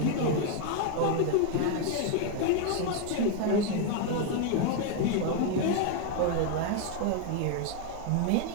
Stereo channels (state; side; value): different; both; correlation 0.01